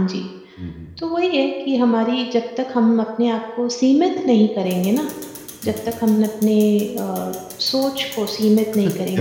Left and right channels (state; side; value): identical; both; correlation 1.00